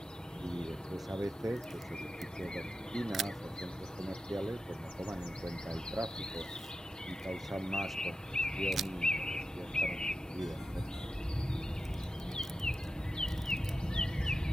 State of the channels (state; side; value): normal; both; correlation 0.91